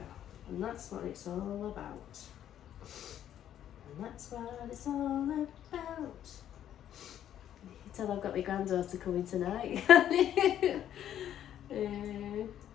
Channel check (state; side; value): quieter; right; 10.8 dB